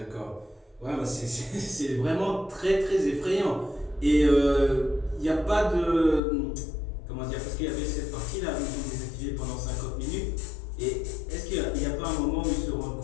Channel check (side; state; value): right; drops out; at 6.2 s